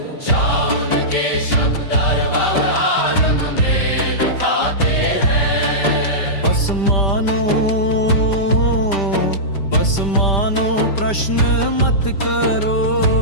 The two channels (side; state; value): right; late; 5.1 ms